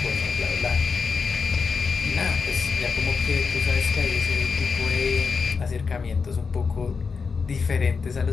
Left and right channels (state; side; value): quieter; right; 5.2 dB